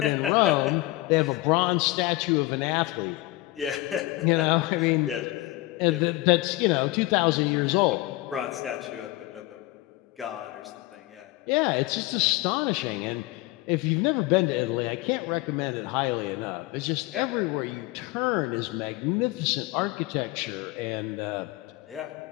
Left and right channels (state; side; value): quieter; right; 19.1 dB